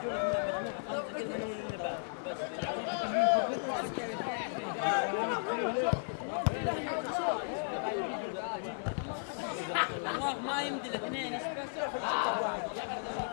الله ما يمدي الاثنين ايش بس؟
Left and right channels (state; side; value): silent; right; digital silence